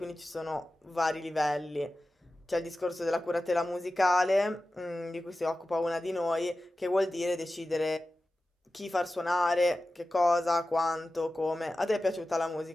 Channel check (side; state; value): both; normal; correlation 0.94